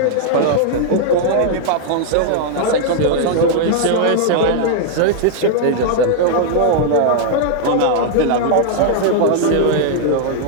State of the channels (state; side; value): different; both; correlation -0.01